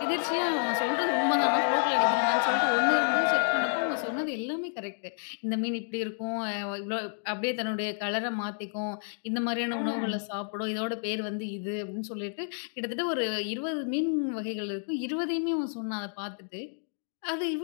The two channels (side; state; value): right; silent; digital silence